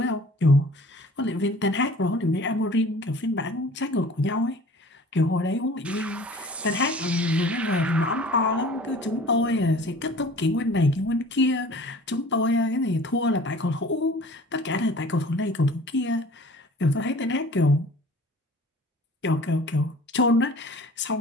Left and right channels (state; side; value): normal; both; correlation 0.46